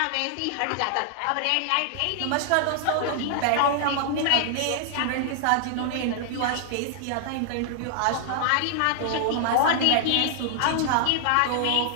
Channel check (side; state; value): both; different; correlation -0.01